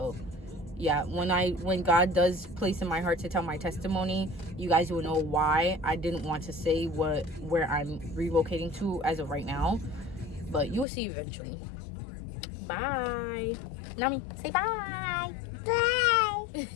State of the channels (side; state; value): right; drops out; at 10.9 s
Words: yeah, when God does place in my heart to tell my testimony, you guys will know why I didn't want to say where I'm relocating to as of right now, but you will see eventually. Bye. Nami, say bye.